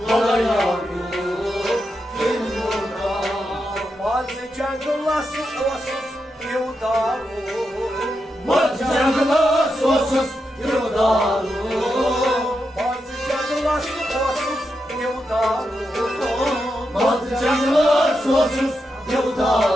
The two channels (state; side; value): normal; both; correlation 0.86